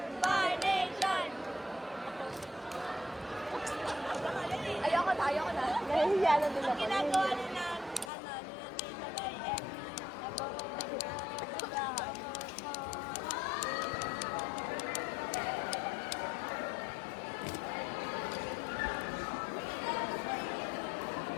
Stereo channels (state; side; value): drops out; right; at 8.1 s